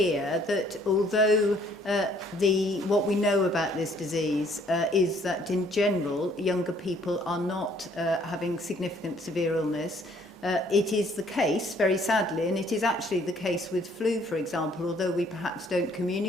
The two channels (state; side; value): normal; both; correlation 0.62